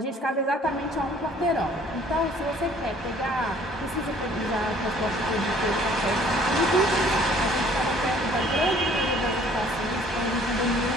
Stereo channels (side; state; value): both; normal; correlation 0.56